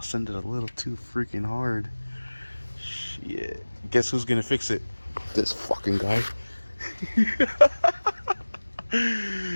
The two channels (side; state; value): both; inverted; correlation -1.00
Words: ended a little too freaking hard. Shit. Guess who's gonna fix it? This fucking guy.